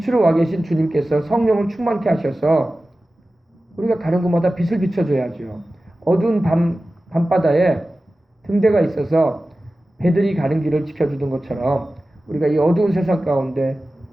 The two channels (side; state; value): both; normal; correlation 0.95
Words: 와 계신 주님께서 성령을 충만케 하셔서 우리가 가는 곳마다 빛을 비춰줘야죠. 어두운 밤바다에 등대가 있어서 배들이 가는 길을 지켜주는 것처럼 우리가 이 어두운 세상 가운데